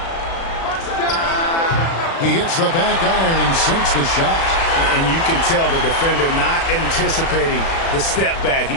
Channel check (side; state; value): right; late; 36 ms